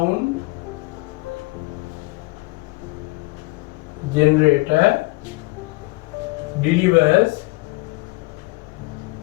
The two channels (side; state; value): right; quieter; 23.5 dB